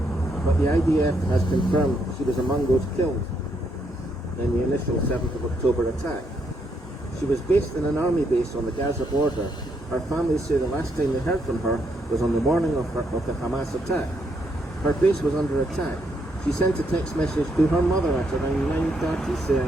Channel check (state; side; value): normal; both; correlation 0.76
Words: but the IDF has confirmed she was among those killed in the initial 7th of October attack. She was based in an army base on the Gaza border. Her family say the last time they heard from her was on the morning of the Hamas attack. Her base was under attack. She sent a text message to her mother at around 9:30